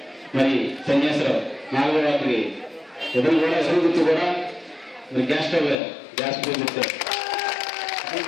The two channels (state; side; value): drops out; right; at 5.8 s